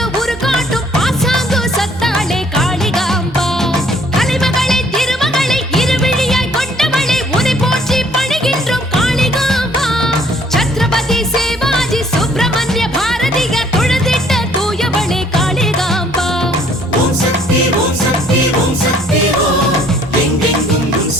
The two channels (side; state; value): both; normal; correlation 0.61